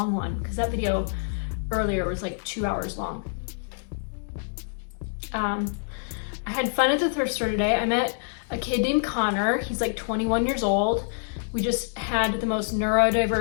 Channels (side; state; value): right; silent; digital silence